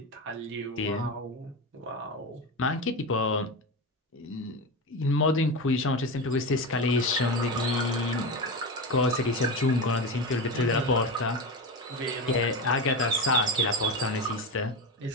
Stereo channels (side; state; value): both; normal; correlation 0.20